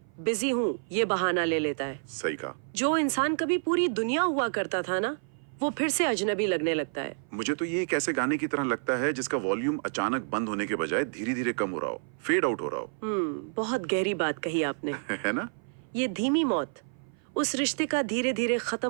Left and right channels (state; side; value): silent; left; 56 dB below the other